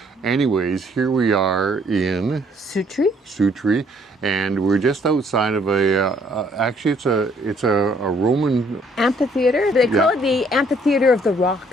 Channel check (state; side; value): normal; both; correlation 0.64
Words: Anyways, here we are in Sutri, and we're just outside of actually it's a Roman amphitheater. They call it the Amphitheater of the